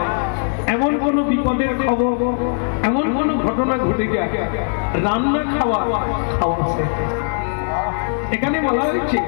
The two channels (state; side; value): silent; right; 66 dB below the other